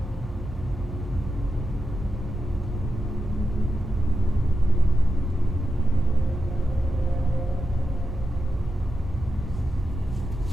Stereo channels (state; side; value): normal; both; correlation 0.89